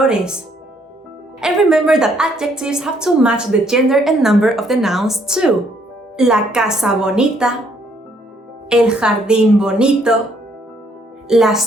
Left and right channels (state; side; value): normal; both; correlation 0.68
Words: And remember that adjectives have to match the gender and number of the nouns too. La casa bonita, el jardín bonito,